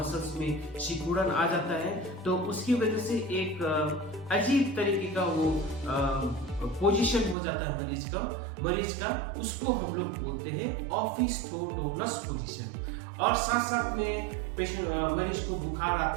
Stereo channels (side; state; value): left; drops out; at 7.4 s